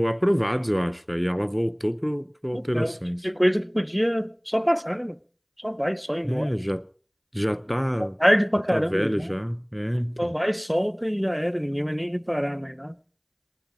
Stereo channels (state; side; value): identical; both; correlation 1.00